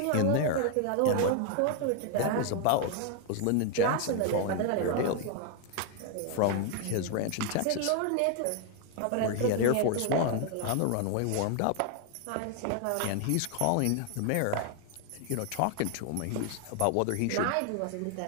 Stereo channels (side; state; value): both; different; correlation 0.00